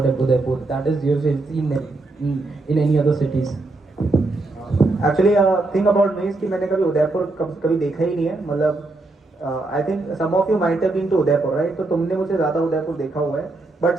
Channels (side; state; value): left; quieter; 3.1 dB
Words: Udaipur that is you've seen in any other cities? Actually, thing about me कि मैंने कभी उदयपुर कभी देखा ही नहीं है। मतलब I think some of you might have been to Udaipur, right? तो तुमने मुझे ज़्यादा उदयपुर देखा हुआ है. But